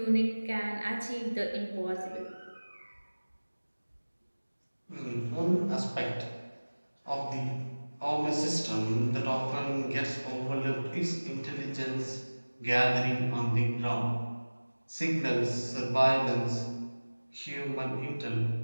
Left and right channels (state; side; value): inverted; both; correlation -1.00